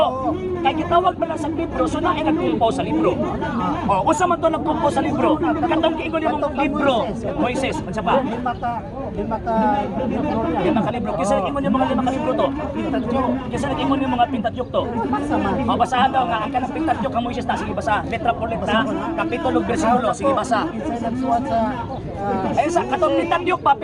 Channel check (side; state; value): both; identical; correlation 1.00